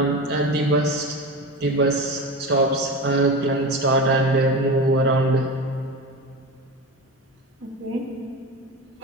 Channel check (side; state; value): both; normal; correlation 0.25